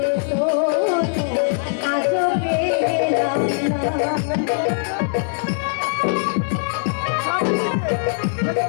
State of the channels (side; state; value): right; silent; 65 dB below the other